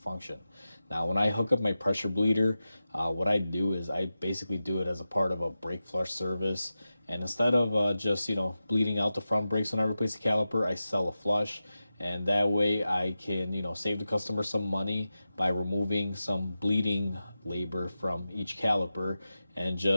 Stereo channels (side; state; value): both; inverted; correlation -0.93